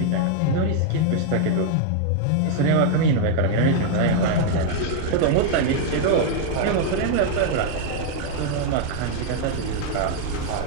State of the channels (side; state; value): both; different; correlation -0.01